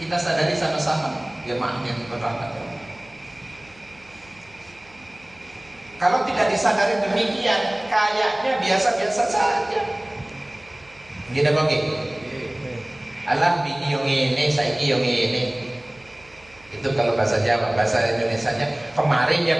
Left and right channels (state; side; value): noise; right; hum, 27 dB below the sound